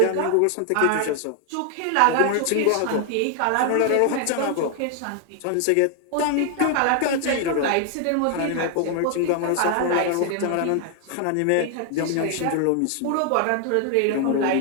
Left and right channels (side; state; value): both; different; correlation 0.00